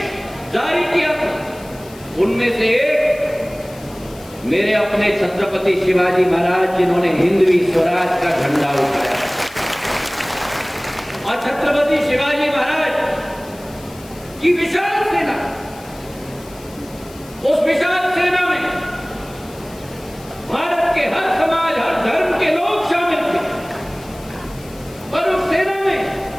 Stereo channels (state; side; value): noise; left; hiss, 22 dB below the sound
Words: जारी किया था, उनमें से एक मेरे अपने छत्रपति शिवाजी महाराज, जिन्होंने हिंदवी स्वराज का झंडा उठाया। और छत्रपति शिवाजी महाराज की विशाल सेना, उस विशाल सेना में भारत के हर समाज, हर धर्म के लोग शामिल थे। पर उस सेना में